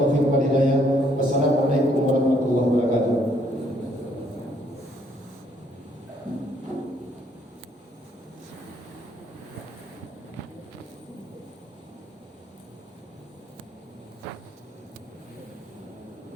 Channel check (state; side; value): normal; both; correlation 0.68